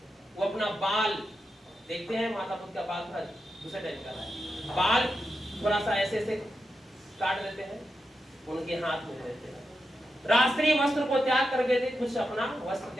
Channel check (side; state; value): both; normal; correlation 0.88